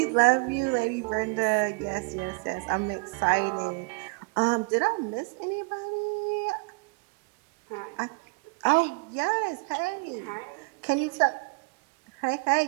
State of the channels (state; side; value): quieter; left; 31.9 dB